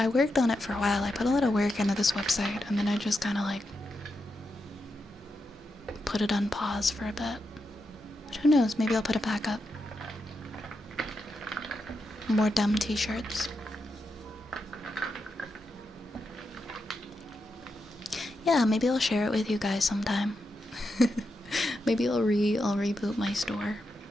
worked on it for a while. I put a lot of work into this website and then I just kind of like put it on pause for a bit. But who knows, maybe I'll put it back up. More dumb t-shirts. Yeah, maybe I'll share it with you guys sometime. Maybe I'll reboot my store.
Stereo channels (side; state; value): both; normal; correlation 0.86